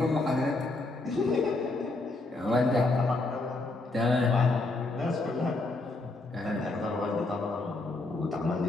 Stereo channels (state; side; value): quieter; right; 3.1 dB